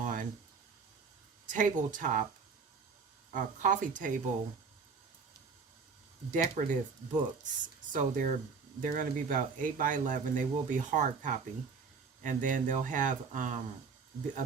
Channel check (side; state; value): left; quieter; 5.1 dB